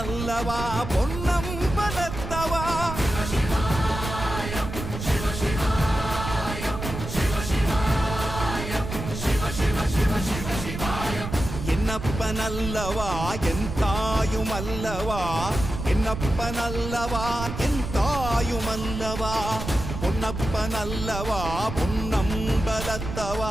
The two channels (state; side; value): noise; right; rumble, 7 dB below the sound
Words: பொன்னம்பலத்தவா. என்னப்பனல்லவா என் தாயுமல்லவா, என்னப்பனல்லவா என் தாயுமல்லவா, பொன்னப்பனல்லவா